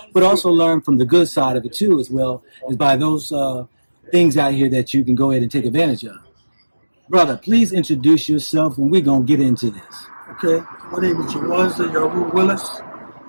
but also learn from the good side of it too, as well as by those things out here that you can go ahead and take advantage of. Brother, please introduce yourself, and we're gonna get into this. Okay, my name is J Wanz Youtube.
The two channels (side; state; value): both; inverted; correlation -1.00